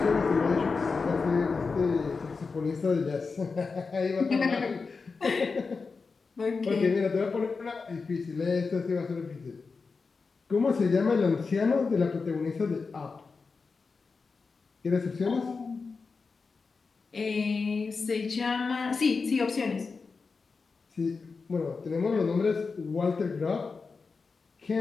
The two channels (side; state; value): right; quieter; 4.6 dB